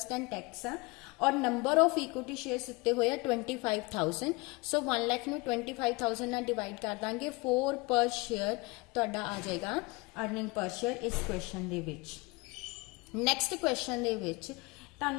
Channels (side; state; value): right; quieter; 25.9 dB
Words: and tax है और नंबर ऑफ इक्विटी शेयर्स दिते हुए 25,000। सो 1 लाख नूं 25,000 नाल डिवाइड कर देंगे 4 पर शेयर तुहाडा आ जाएगा अर्निंग पर शेयर इस क्वेश्चन दे विच। नैक्सट क्वेश्चन दे विच